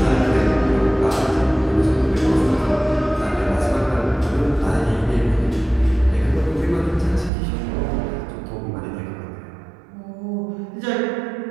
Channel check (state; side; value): drops out; left; at 7.3 s